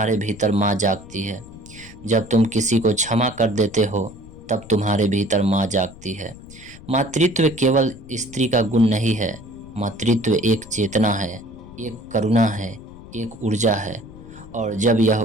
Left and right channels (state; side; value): noise; left; rumble, 19 dB below the sound